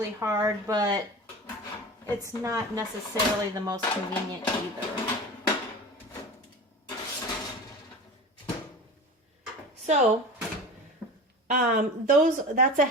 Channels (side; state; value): both; normal; correlation 0.33